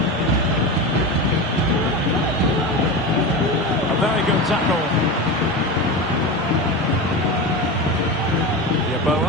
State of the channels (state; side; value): normal; both; correlation 0.23